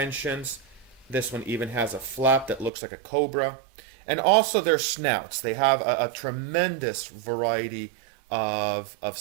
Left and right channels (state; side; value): drops out; left; at 2.7 s